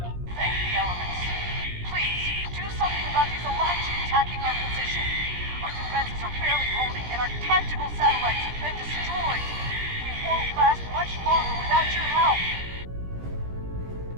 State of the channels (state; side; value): late; left; 17 ms